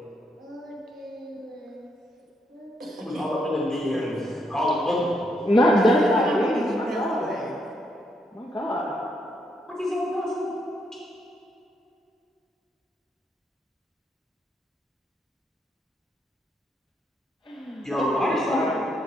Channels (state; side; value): normal; both; correlation 0.76